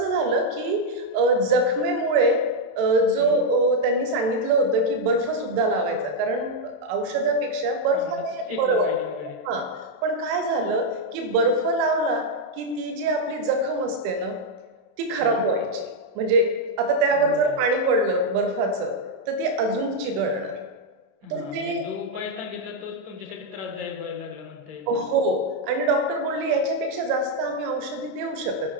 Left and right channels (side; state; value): left; late; 27 ms